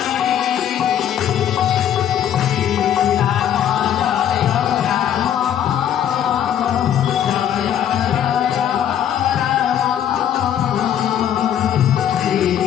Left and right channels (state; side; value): quieter; right; 10.0 dB